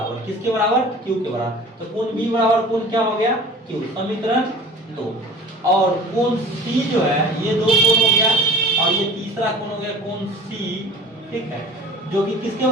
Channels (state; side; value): normal; both; correlation 0.42